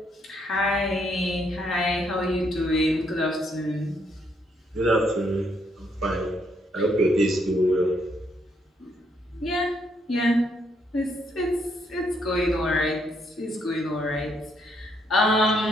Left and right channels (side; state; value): both; normal; correlation 0.73